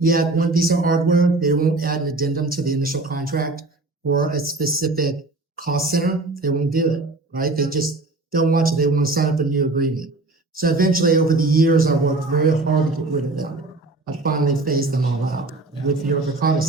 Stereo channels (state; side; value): quieter; left; 3.2 dB